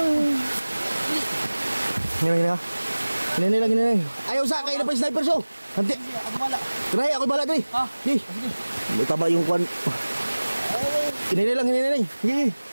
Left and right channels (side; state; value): both; inverted; correlation -1.00